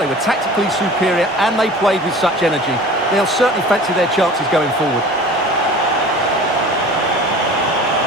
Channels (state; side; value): normal; both; correlation 0.41